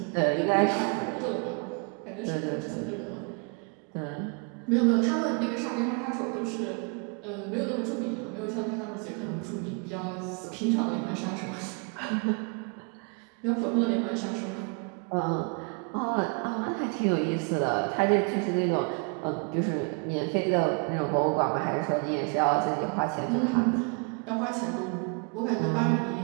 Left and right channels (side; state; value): left; quieter; 36.9 dB